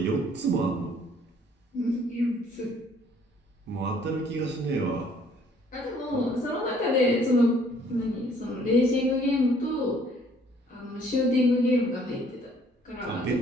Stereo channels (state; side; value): normal; both; correlation 0.60